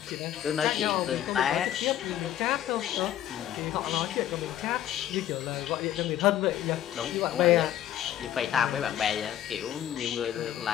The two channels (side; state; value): right; quieter; 11.6 dB